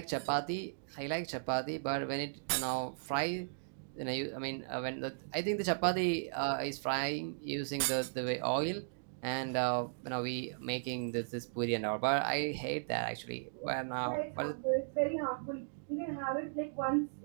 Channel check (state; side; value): silent; left; digital silence